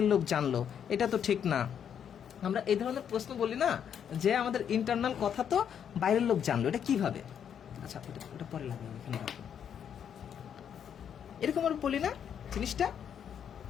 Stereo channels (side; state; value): right; quieter; 8.4 dB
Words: লোক জানলো, এটা তো ঠিক না। আমরা এই ধরনের প্রশ্ন বলি না, যে আমাদের ইন্টারনাল কথা তো বাইরের লোক জানলো, এটা কিভাবে? আচ্ছা, ওটা পরে লাগবে, এখানে রাখো। এরকম আমরা বলি না জিনিসটা,